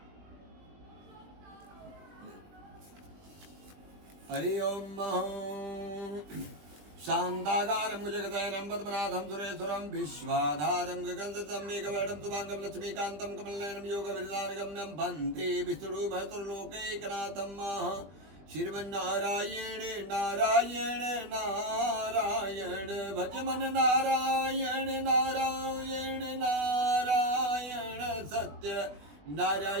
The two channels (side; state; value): left; late; 20 ms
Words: हरि ओम शांताकारं जगदयनं पद्मनाभं सुरेश्वरं विश्वाधारं गगनसदृशं मेघवर्णं शुभांगं लक्ष्मीकान्तं कमलनयनं योगविरदानगम्यं वन्दे विष्णुभर्तृलोकैकनाथं श्रीमन्नारायण नारायण नारायण भजमन नारायण नारायण नारायण सत्य